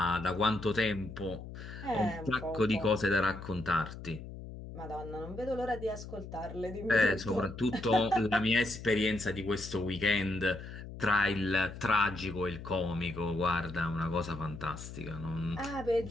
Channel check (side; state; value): left; noise; hum, 11 dB below the sound